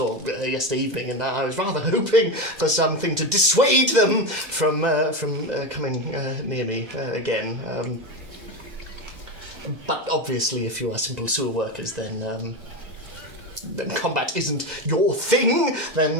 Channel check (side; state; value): left; late; 2.1 ms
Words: yesterday evening, and I was rather hoping for something to dissuade them from coming near me again. But obviously, if you are simple sewer workers, then combat isn't your thing.